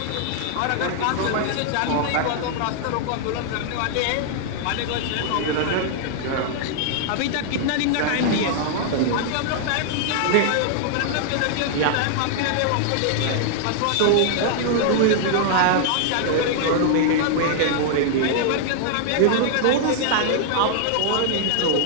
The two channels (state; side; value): different; both; correlation -0.01